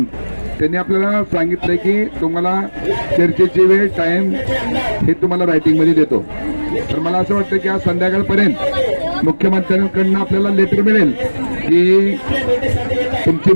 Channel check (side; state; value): both; inverted; correlation -1.00